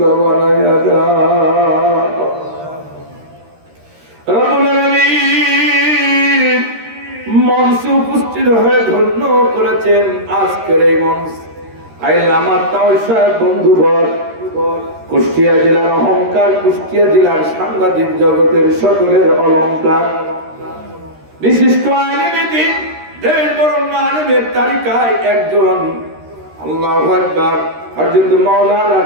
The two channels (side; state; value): left; late; 13 ms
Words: বানাইয়া দাও। রব্বুল আলামিন মঞ্চে উপস্থিত হয়ে ধন্য করেছেন আজকের এই মঞ্চ। আইল আমার তাও সাহেব বন্ধুবর, কুষ্টিয়া জেলার অহংকার, কুষ্টিয়া জেলার সাংবাদিক জগতের সকলের অলংকার, বিশিষ্ট আলেমে দ্বীন, দেশ বরণ্য আলেমের তালিকায় একজন। আল্লাহু আকবার। হযরত মাওলানা